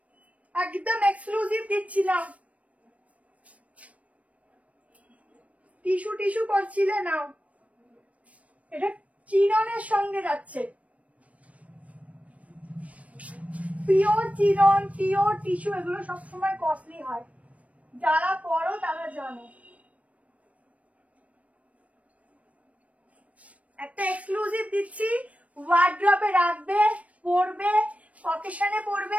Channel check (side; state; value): left; late; 0.066 ms